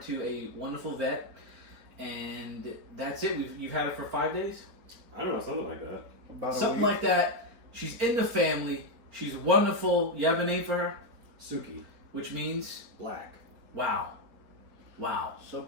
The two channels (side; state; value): left; late; 4.4 ms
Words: a wonderful vet, and that's it. You've had her for 5 days, I don't know, something like that. About a something week. like that. She's in the family. She's wonderful. You have a name for her, Suki, which means black. Wow.